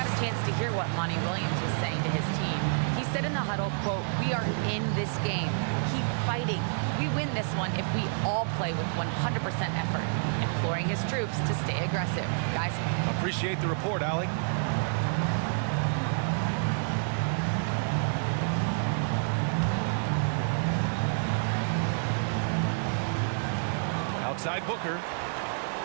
a chance to hear what Monty Williams was saying to his team. He said in the huddle, quote, "We are in this game. Keep fighting. We win this one if we all play with 100% effort," imploring his troops to stay aggressive. Guys. Appreciate the report, Allie. Outside Booker.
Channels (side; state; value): left; silent; digital silence